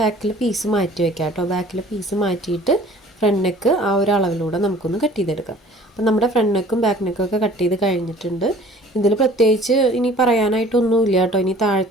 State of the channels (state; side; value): normal; both; correlation 0.50